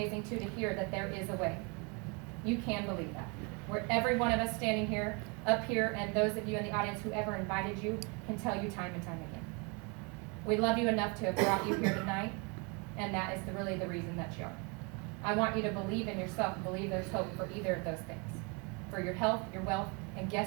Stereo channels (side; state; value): left; quieter; 30.2 dB